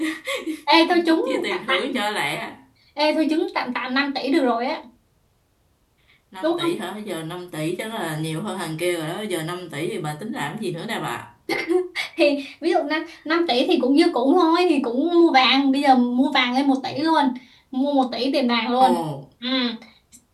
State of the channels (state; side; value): identical; both; correlation 1.00